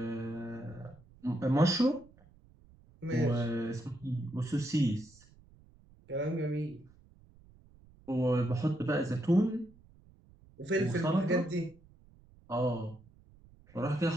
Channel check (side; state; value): right; noise; rumble, 26 dB below the sound